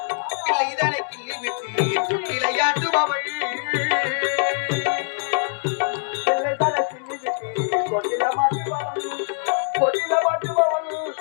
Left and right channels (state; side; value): silent; right; digital silence